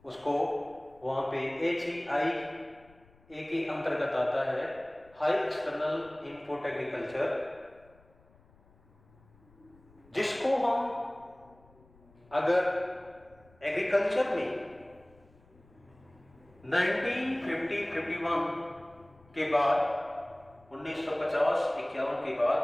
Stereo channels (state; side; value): noise; left; rumble, 28 dB below the sound